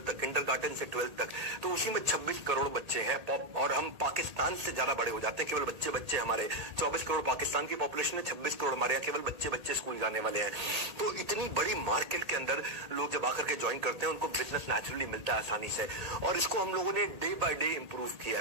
तक, किंडरगार्टन से 12 तक, तो उसी में 26 करोड़ बच्चे हैं। और हम पाकिस्तान से ज्यादा बड़े हो जाते हैं। केवल बच्चे हमारे 24 करोड़ पाकिस्तान की पॉपुलेशन है, 26 करोड़ हमारे यहाँ केवल बच्चे स्कूल जाने वाले हैं। तो इतनी बड़ी मार्केट के अंदर लोग जब आकर के ज्वाइन करते हैं उनको बिजनेस नेचुरली मिलता है आसानी से। और इसको हम लोगों ने डे बाय डे इंप्रूव किया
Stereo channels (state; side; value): late; left; 1.8 ms